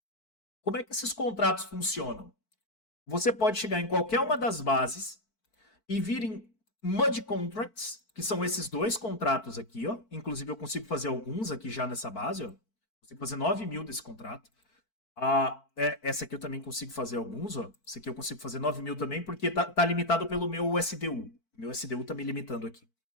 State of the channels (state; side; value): late; right; 4.5 ms